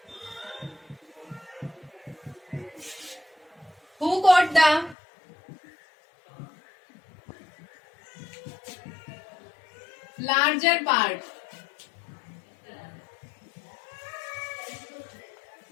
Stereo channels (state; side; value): drops out; right; at 5.0 s